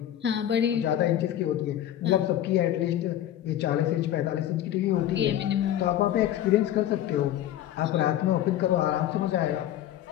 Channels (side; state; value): right; quieter; 12.0 dB